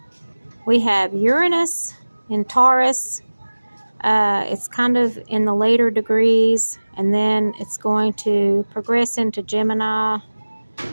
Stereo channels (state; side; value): inverted; both; correlation -1.00